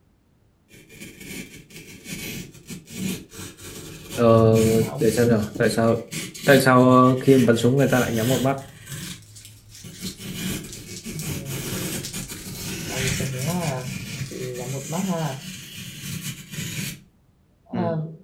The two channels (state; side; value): identical; both; correlation 1.00